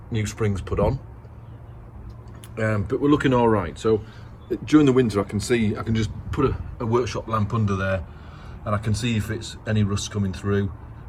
new springs put on. But we're looking all right. So during the winter, I can just put a workshop lamp under there, and I can see if it's any rust coming through,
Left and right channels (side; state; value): both; identical; correlation 1.00